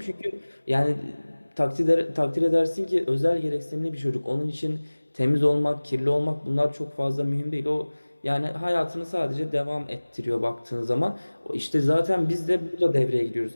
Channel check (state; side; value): inverted; both; correlation -1.00